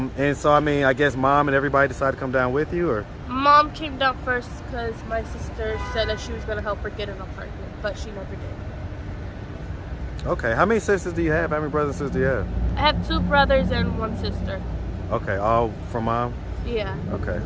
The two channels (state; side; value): identical; both; correlation 1.00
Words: so, I mean, I guess mom and everybody decided to come down with you, or? Mom came down first because my sister said that she was going to help her get an apartment, but she never did. Okay. How many sisters do you have? How many brothers and sisters do you have? I have 2 brothers and 1 sister. Okay. All from mom? Yeah. Okay.